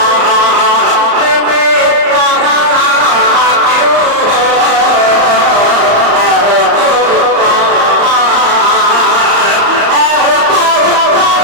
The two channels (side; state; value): left; late; 34 ms